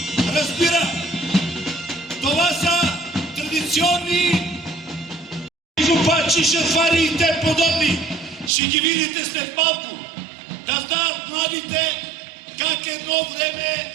разбира. Това са традиционни жупачи, шафари и те подобни. Ще ги видите след малко. Да знаят младите как едно време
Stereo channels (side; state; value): left; drops out; at 8.5 s